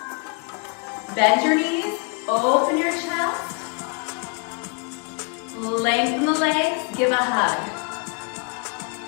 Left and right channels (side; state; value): right; quieter; 35.6 dB